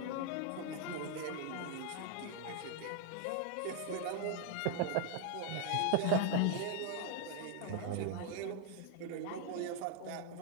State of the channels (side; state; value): both; different; correlation 0.01